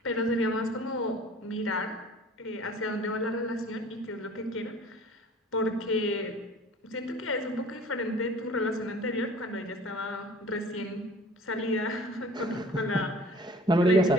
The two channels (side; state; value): both; normal; correlation 0.47